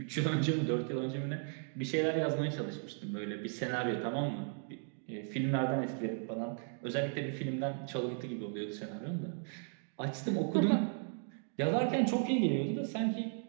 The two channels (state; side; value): silent; left; 54 dB below the other